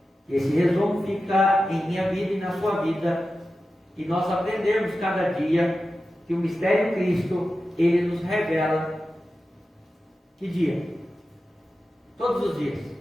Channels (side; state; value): both; normal; correlation 0.93